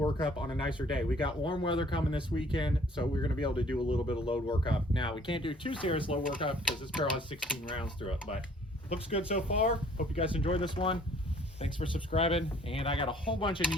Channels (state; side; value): normal; both; correlation 0.57